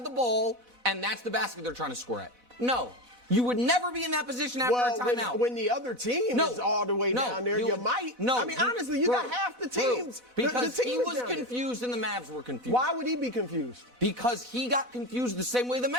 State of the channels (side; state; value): left; late; 4.0 ms